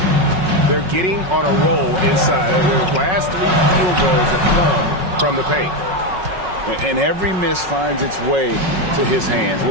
They're getting on a roll inside. Their last 3 field goals have come from the paint. And every miss finds its way to his hands.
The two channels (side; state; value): left; late; 5.4 ms